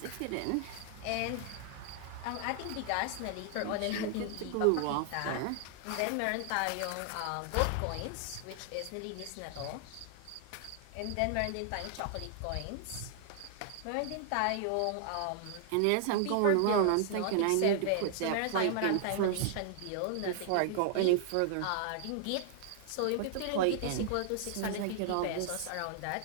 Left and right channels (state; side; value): different; both; correlation 0.00